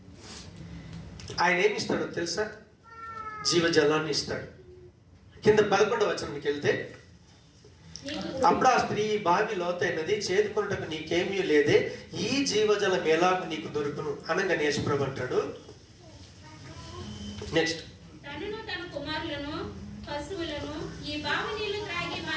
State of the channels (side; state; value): both; identical; correlation 1.00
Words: ఆయన ఏమి ఇస్తాడో తెలుసా? జీవజలాన్ని ఇస్తాడు. కింద 11వ వచనానికి వెళ్తే, అప్పుడు ఆ స్త్రీ, బావి లోతైనది, చేదుకొనుటకు నీకేమీ లేదే, ఈ జీవజలం ఎలాగూ నీకు దొరుకును అనగా యేసు ప్రభు అంటాడు. నెక్స్ట్,